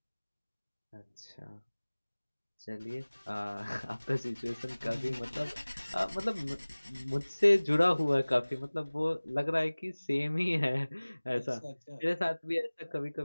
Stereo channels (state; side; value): inverted; both; correlation -1.00